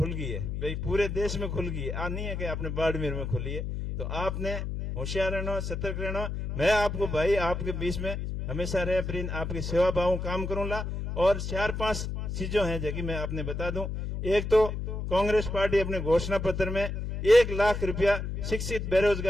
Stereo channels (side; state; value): left; noise; hum, 4 dB below the sound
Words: गई है, भाई पूरे देश में खुल गई है, आ नहीं है कि आपने बाड़मेर में खुली है। तो आपने होशियार रहना, सतर्क रहना। मैं आपको भाई आपके बीच में हमेशा रह प्रिन आपकी सेवा भाव काम करूंगा। और 4-5 चीजों हैं जो कि मैं आपने बता दूं। एक तो कांग्रेस पार्टी अपने घोषणा पत्र में 1 लाख रुपया शिक्षित